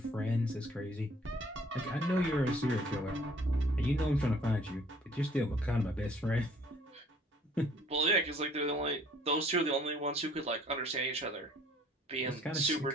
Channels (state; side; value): normal; both; correlation 0.57